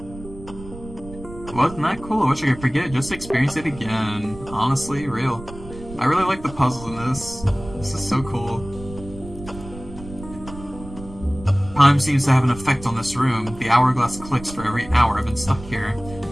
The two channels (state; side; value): noise; right; rumble, 15 dB below the sound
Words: Wasn't that cool? I wish I could forget it. Just experience it again. Honestly, real. I really like the puzzles in this. This is so cool. Time seems to have an effect on this room. The hourglass clicks for every hour I've been stuck here.